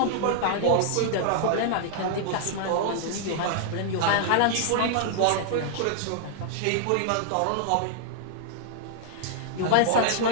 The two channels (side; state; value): both; different; correlation -0.01